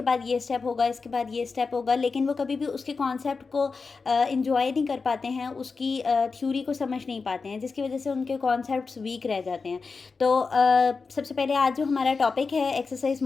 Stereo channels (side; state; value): right; quieter; 4.6 dB